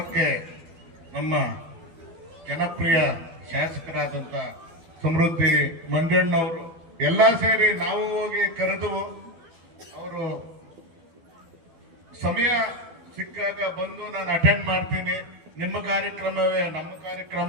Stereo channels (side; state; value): left; late; 12 ms